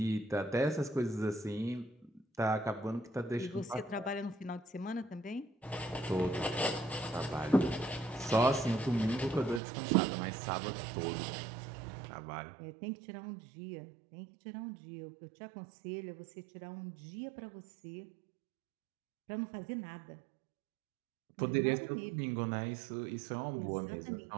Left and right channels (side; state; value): left; drops out; at 9.6 s